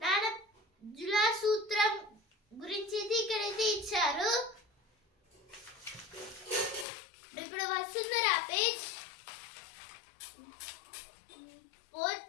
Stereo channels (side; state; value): right; drops out; at 6.9 s